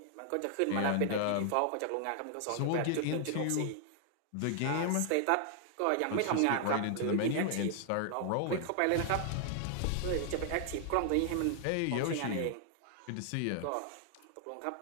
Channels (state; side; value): different; both; correlation 0.00